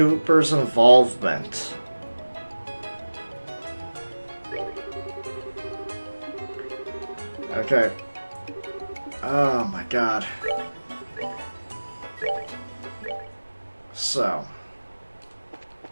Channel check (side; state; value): both; inverted; correlation -1.00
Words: involvement? Okay. Oh my god. So.